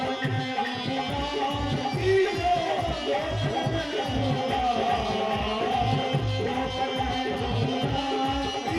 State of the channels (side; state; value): both; identical; correlation 1.00